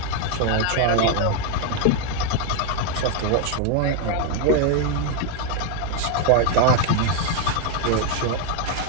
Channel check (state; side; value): different; both; correlation 0.01